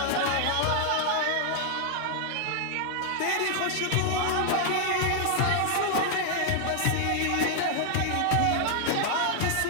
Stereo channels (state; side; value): different; both; correlation 0.00